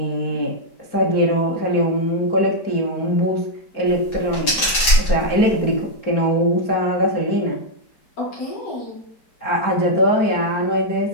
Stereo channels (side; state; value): right; late; 4.8 ms